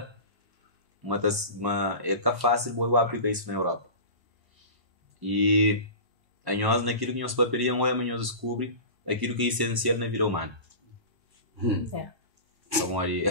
é tá fácil eu aplicar isso na Europa. E a nós naquilo que nós paperiam ou nós descobre aquilo que é essencial na vida humana. Então ali,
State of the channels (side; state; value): left; late; 1.0 ms